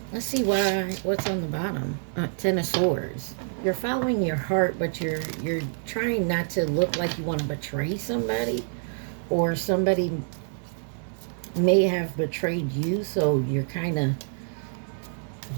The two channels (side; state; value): left; silent; digital silence